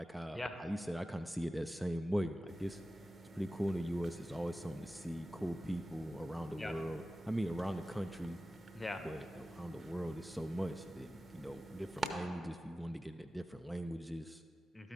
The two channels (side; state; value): both; normal; correlation 0.95